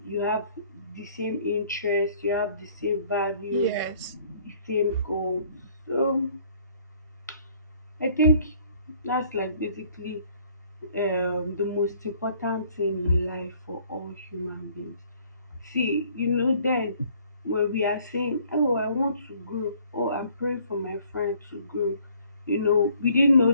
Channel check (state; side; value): inverted; both; correlation -0.59